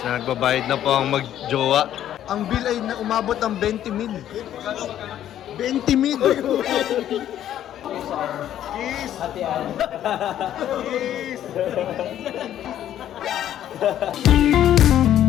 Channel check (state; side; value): quieter; right; 11.3 dB